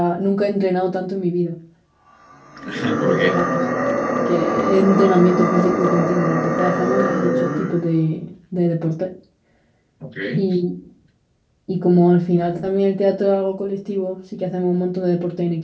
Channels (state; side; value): identical; both; correlation 1.00